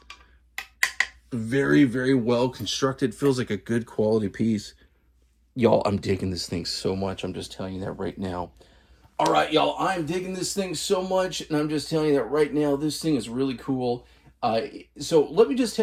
Very, very well constructed. Feels like a good quality piece. Y'all, I'm digging this thing so much. I'm just telling you that right now. All right, y'all, I'm digging this thing so much, and I'm just telling you that right now. This thing is really cool. So let me just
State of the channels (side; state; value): both; identical; correlation 1.00